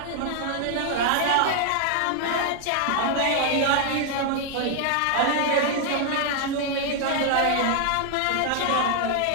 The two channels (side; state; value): both; different; correlation 0.00